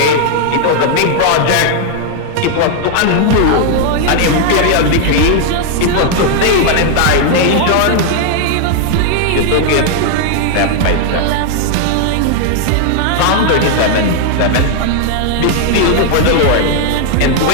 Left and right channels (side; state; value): both; different; correlation 0.00